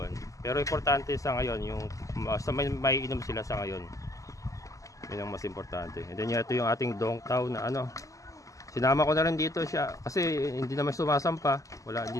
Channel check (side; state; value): right; late; 0.16 ms